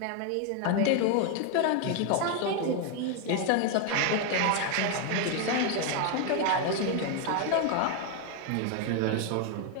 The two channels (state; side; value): different; both; correlation 0.01